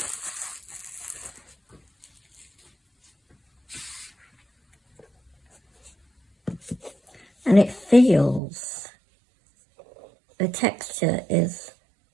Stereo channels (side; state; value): left; drops out; at 8.4 s